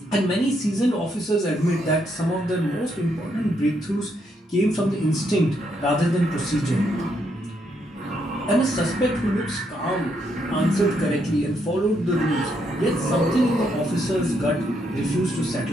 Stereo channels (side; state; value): both; normal; correlation 0.76